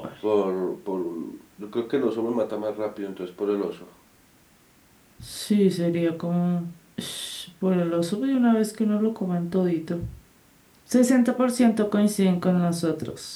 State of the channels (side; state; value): both; identical; correlation 1.00